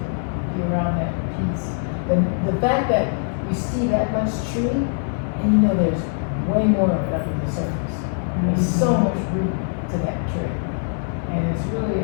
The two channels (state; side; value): silent; right; digital silence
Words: be around that peace. The fact that you see that much tree, and you know there's way more of it under the surface. There's so much root to that tree, and it's really